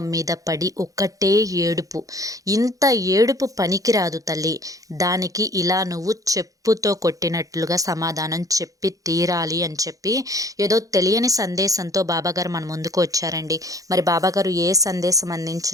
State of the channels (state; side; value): late; left; 0.17 ms